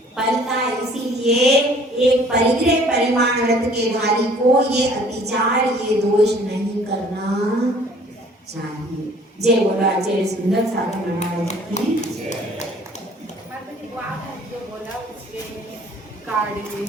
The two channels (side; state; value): both; normal; correlation 0.55